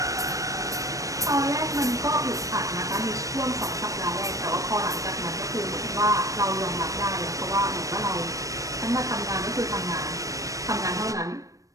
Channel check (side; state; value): left; late; 0.16 ms